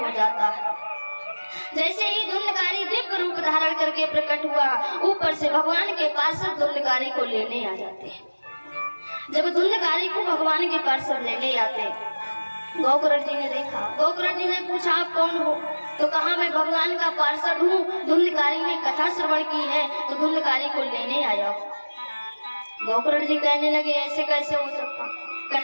हो जाता है। जैसे ही धुंधकारी दिव्य रूप धारण करके प्रकट हुआ, ऊपर से भगवान के पार्षद धुंधकारी को लेने आ जाते हैं। जब धुंधकारी को भगवान के पार्षद लेने आते, गोकुरट जी ने देखा। गोकुरट जी ने पूछा, आप कौन हो? तो कहा, मैं भगवान का पार्षद हूँ, धुंधकारी ने कथा श्रवण की है तो धुंधकारी को लेने आया हूँ। गोकुरट जी कहने लगे, ऐसे कैसे हो सकता?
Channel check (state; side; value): inverted; both; correlation -1.00